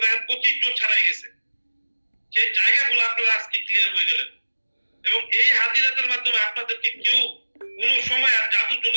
দেখেন 25 জন ছাড়াই গেছে। সেই জায়গাগুলো আপনারা আজকে ক্লিয়ার হয়ে গেলেন। এবং এই হাজিরাতের মাধ্যমে আপনাদেরকে কেউ কোন সময় আর জাদুর জন্য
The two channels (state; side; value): inverted; both; correlation -1.00